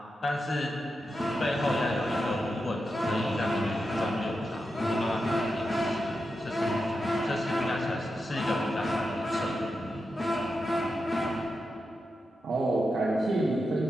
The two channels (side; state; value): both; normal; correlation 0.88